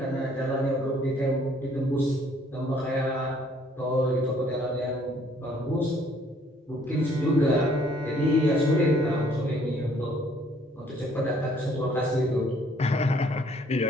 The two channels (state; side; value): normal; both; correlation 0.62